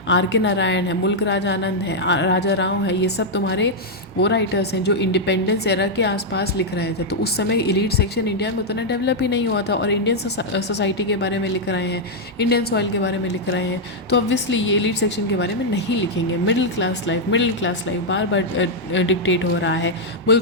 R.K. नारायण है, मुल्क राज आनंद है, राजा राव है, ये सब तुम्हारे वो राइटर्स हैं जो इंडिपेंडेंस एरा के आसपास लिख रहे थे। तो उस समय इलीट सेक्शन इंडिया में उतना डेवलप ही नहीं हुआ था, और इंडियन सोसाइटी के बारे में लिख रहे हैं, इंडियन सॉइल के बारे में लिख रहे हैं, तो ऑब्वियसली ये एलीट सेक्शन के बारे में नहीं लिखेंगे। मिडिल क्लास लाइफ बार बार डिक्टेट हो रहा है।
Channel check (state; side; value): normal; both; correlation -0.03